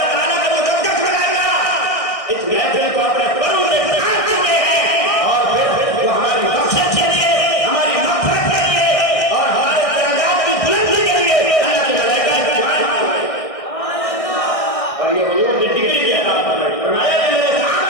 ताला का मुकद्दस बनाया इस महफिल को अपने परों से ढांक चुके हैं और फिर वो हमारी बख्शिश के लिए, हमारी मग़फ़िरत के लिए और हमारे दर्जात की बुलंदी के लिए अल्लाह के मलाइका की दुआएं मांग रहे हैं। और ये हुजूर ने डिग्री की अता फरमाई, फरमाया मेरे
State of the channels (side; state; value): right; late; 1.6 ms